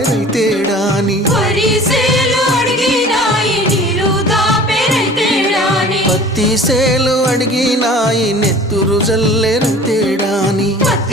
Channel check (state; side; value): normal; both; correlation 0.45